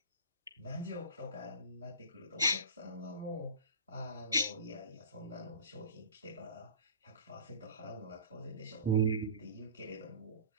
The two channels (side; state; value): both; inverted; correlation -0.36